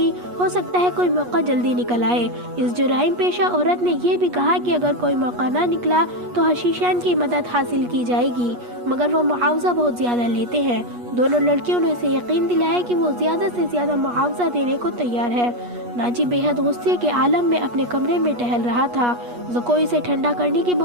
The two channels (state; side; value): late; left; 8.3 ms